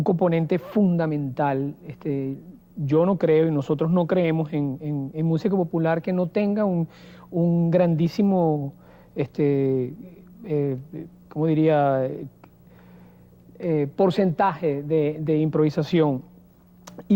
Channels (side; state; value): both; identical; correlation 1.00